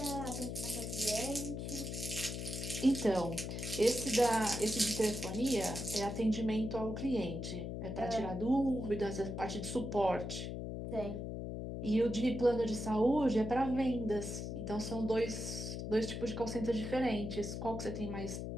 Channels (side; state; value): left; noise; hum, 5 dB below the sound